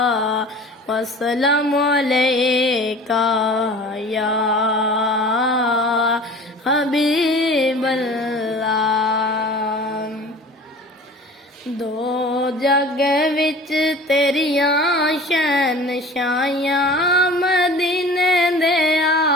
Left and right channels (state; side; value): normal; both; correlation 0.42